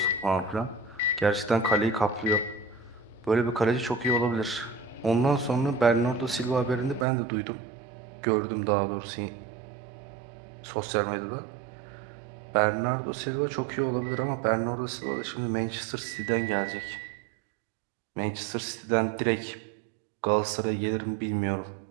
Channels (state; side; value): drops out; left; at 7.1 s